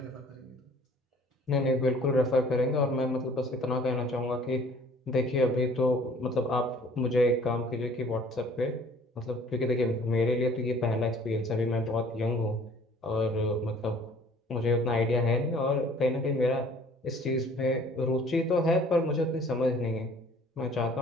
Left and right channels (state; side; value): normal; both; correlation 0.53